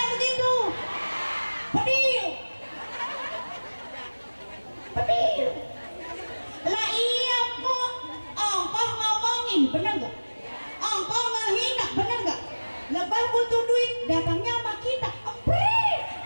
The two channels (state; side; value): inverted; both; correlation -1.00